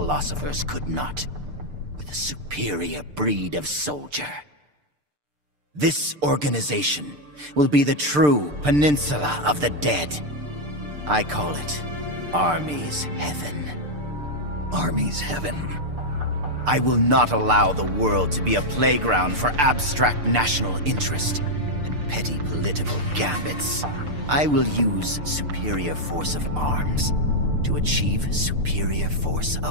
could not, with a superior breed of soldier. This organization will be the true Peninsula of the Dead. I call it Army's Heaven. Army's Heaven? I will not allow the world to be a playground for abstract national interest and petty political gambits. I will use superior force of arms to achieve superior force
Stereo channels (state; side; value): late; left; 6.7 ms